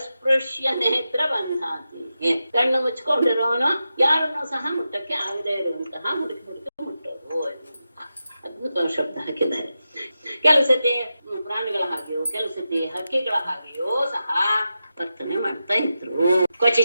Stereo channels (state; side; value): inverted; both; correlation -0.90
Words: ನೇತ್ರ ಬಂಧಾತಿ. ಕಣ್ಣು ಮುಚ್ಕೊಂಡಿರೋನು ಯಾರನ್ನು ಸಹ ಮುಟ್ಟಕ್ಕೆ ಆಗದೆ ಇರುವಂತಹ ಹುಡುಕಿ ಮುಟ್ಟೋದು. ಅದ್ಭುತವಾದ ಶಬ್ದ ಹಾಕಿದ್ದಾರೆ. ಕೆಲಸತಿ ಪ್ರಾಣಿಗಳ ಹಾಗೆಯೋ ಕೆಲಸತಿ ಹಕ್ಕಿಗಳ ಹಾಗೆಯೋ ಸಹ ವರ್ತನೆ ಮಾಡ್ತಾ ಇದ್ರು.